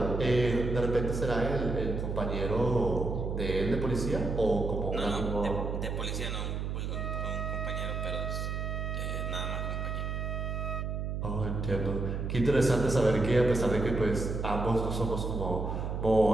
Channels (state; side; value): noise; right; hum, 3 dB below the sound